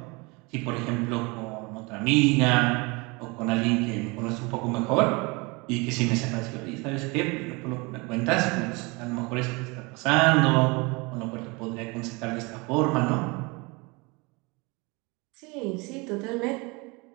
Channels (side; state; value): left; quieter; 27.0 dB